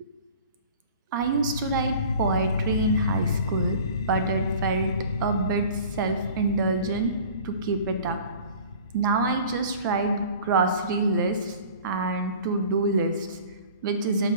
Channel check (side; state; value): both; inverted; correlation -0.44